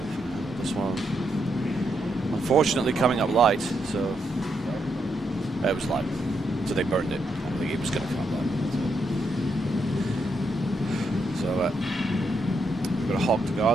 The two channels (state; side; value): normal; both; correlation 0.80